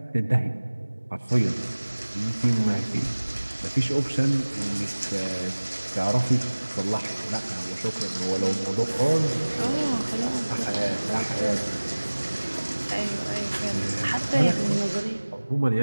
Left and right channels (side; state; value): both; inverted; correlation -1.00